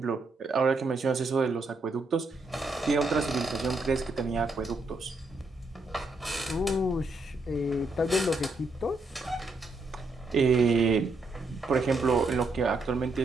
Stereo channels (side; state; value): left; quieter; 3.0 dB